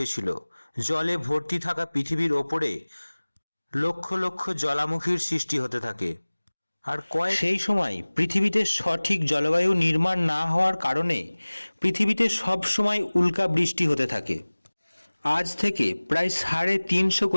জলে ভর্তি থাকা পৃথিবীর ওপরে লক্ষ লক্ষ জ্বালামুখীর সৃষ্টি হতে থাকে। আর সেই সময় পৃথিবীতে সঠিক জলবায়ু নির্মাণ না হওয়ার কারণে পৃথিবীতে সব সময় উল্কা বৃষ্টি হতে থাকে। আজ থেকে প্রায় 350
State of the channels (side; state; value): both; inverted; correlation -1.00